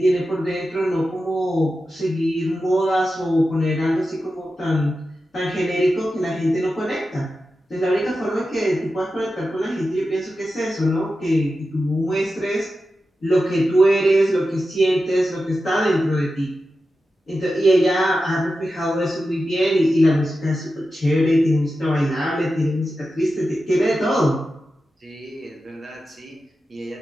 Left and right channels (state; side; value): normal; both; correlation 0.91